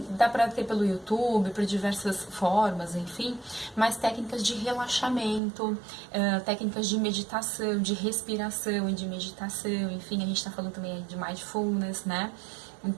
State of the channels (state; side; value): drops out; left; at 5.4 s